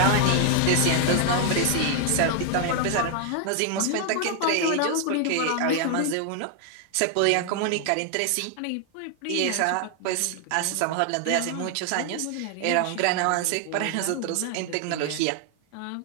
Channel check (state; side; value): different; both; correlation 0.00